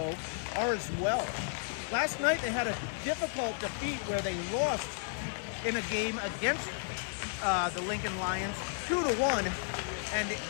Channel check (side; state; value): right; silent; digital silence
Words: are as well. Last night they had a difficult defeat where they lost in a game against the Lincoln Lions 2-1, and